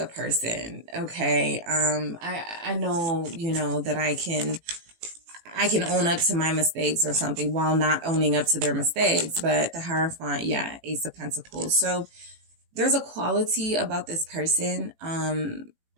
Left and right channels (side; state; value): left; late; 18 ms